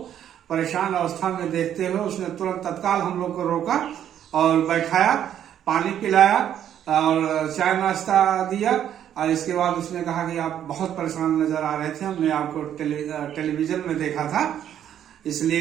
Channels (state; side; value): quieter; left; 10.2 dB